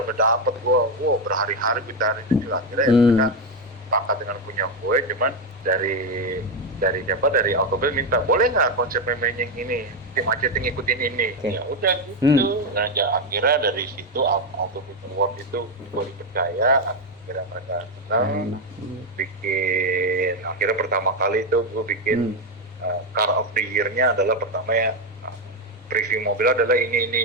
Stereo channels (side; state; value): both; normal; correlation 0.07